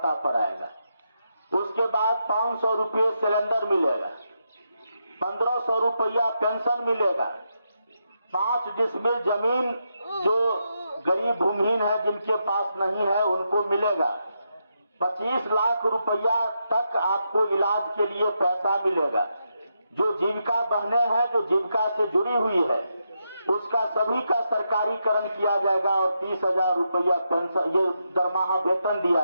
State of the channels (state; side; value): inverted; both; correlation -0.83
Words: पर आएगा। उसके बाद 500 रुपये सिलेंडर मिलेगा, 1500 रुपया पेंशन मिलेगा, 5 डिसमिल जमीन जो गरीब भूमिहीन है जिनके पास नहीं है उनको मिलेगा, 25 लाख रुपया तक आपको इलाज के लिए पैसा मिलेगा। जो जीविका बहने हैं जो जीविका से जुड़ी हुई है उसका सभी का सरकारीकरण किया जाएगा और 30,000 रुपया पेंशन ये दरमाहा वेतन दिया